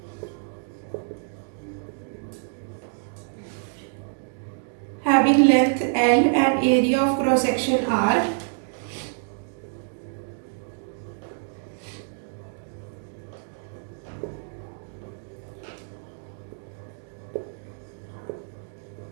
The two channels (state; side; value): silent; left; digital silence